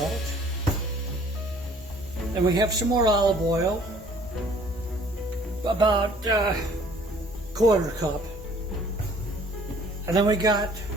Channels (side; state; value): both; normal; correlation 0.56